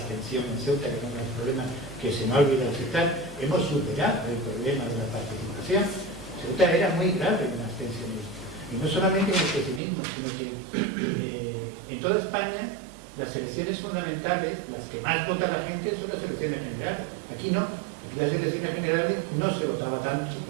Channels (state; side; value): drops out; left; at 9.8 s